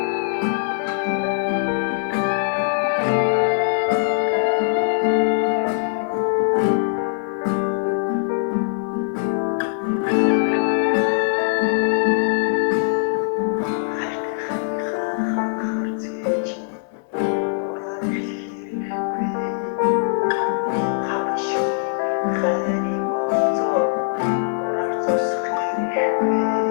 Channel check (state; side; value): silent; right; digital silence